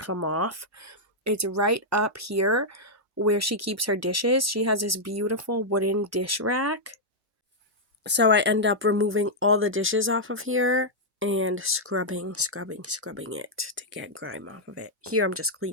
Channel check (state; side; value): normal; both; correlation -0.06